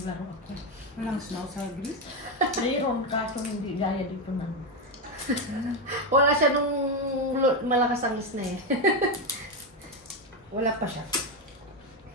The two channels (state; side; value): normal; both; correlation 0.09